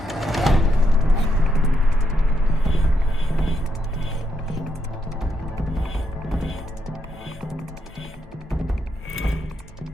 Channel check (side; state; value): both; normal; correlation 0.80